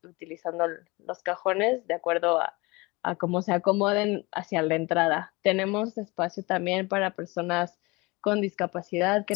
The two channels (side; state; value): right; quieter; 24.5 dB